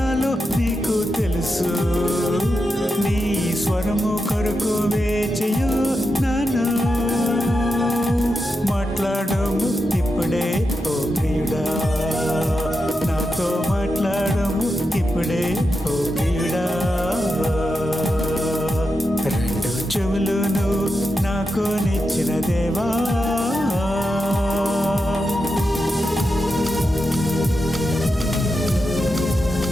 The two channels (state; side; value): normal; both; correlation 0.88